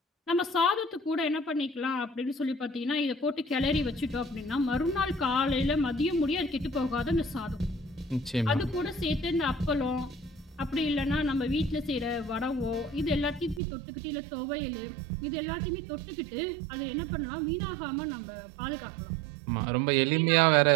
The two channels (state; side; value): drops out; left; at 13.6 s